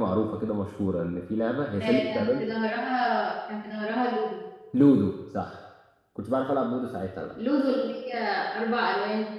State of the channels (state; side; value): identical; both; correlation 1.00